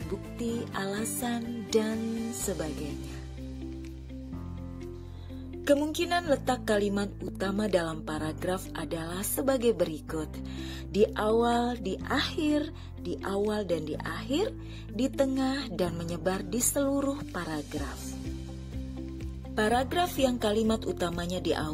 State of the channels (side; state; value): both; identical; correlation 1.00